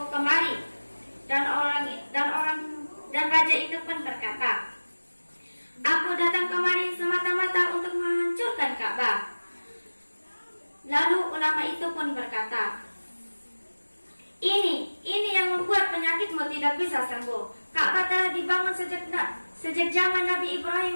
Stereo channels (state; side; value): inverted; both; correlation -1.00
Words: kemari?" Dan Dan raja itu pun berkata, "Aku datang kemari semata-mata untuk menghancurkan Ka'bah." Lalu ulama itu pun berkata, Ini yang membuat penyakitmu tidak bisa sembuh. Ka'bah telah dibangun sejak zaman Nabi Ibrahim